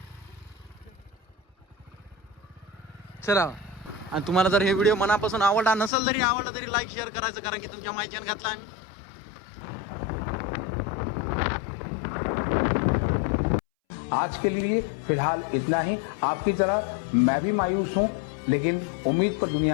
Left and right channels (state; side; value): drops out; right; at 5.9 s